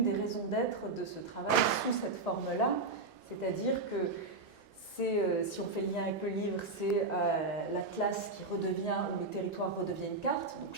raisons d'être de ce travail sous cette forme-là. C'est-à-dire que si on fait le lien avec le livre, c'est l'atlas qui redevient, où le territoire redevient une carte, donc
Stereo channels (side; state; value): left; quieter; 3.5 dB